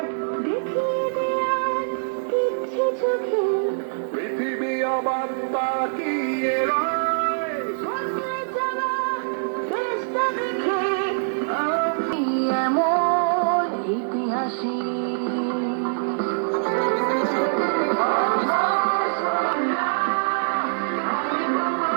দেখিয়ে দেয়া কিচ্ছু চোখে, পৃথিবী অবাক তাকিয়ে রয়। বদলে যাওয়া দেশটা দেখে আমি এমন ইতিহাসী।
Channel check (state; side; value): silent; left; 58 dB below the other